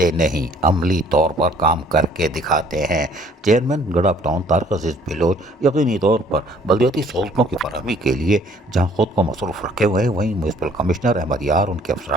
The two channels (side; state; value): both; normal; correlation 0.58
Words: نہیں، عملی طور پر کام کر کے دکھاتے ہیں۔ چیئرمین گڈاپ ٹاؤن طارق عزیز بلوچ یقینی طور پر بلدیاتی سہولتوں کی فراہمی کے لیے جہاں خود کو مصروف رکھے ہوئے ہیں، وہیں میونسپل کمشنر احمد یار، ان کے